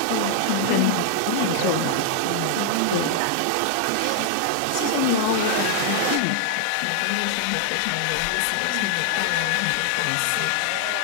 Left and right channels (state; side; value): different; both; correlation -0.01